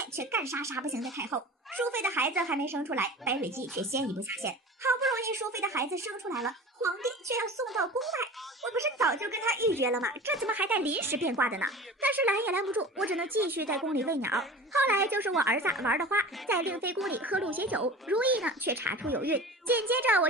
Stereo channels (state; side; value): normal; both; correlation 0.36